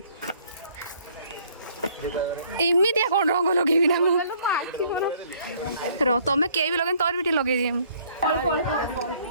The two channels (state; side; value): inverted; both; correlation -0.60